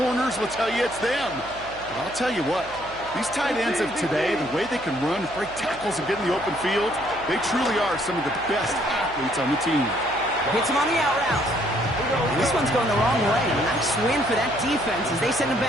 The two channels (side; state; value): right; noise; hum, 19 dB below the sound